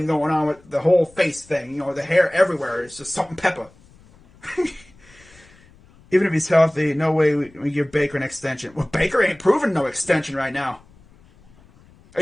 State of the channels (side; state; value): left; noise; rumble, 27 dB below the sound